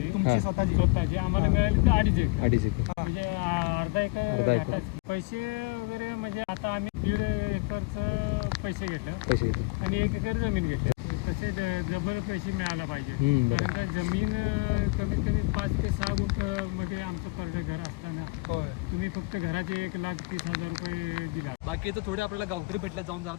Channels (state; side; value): quieter; right; 26.4 dB